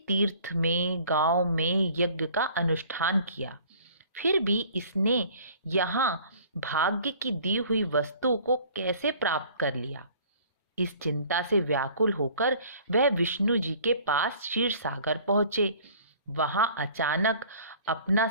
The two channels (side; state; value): both; inverted; correlation -0.51